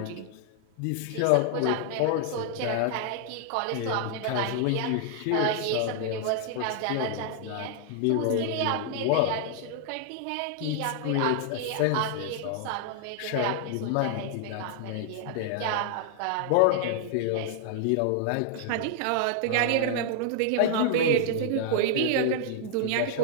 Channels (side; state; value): both; different; correlation 0.00